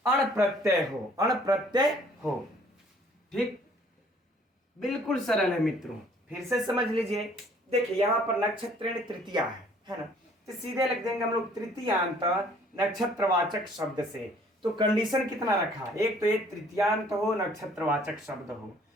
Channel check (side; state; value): both; normal; correlation 0.57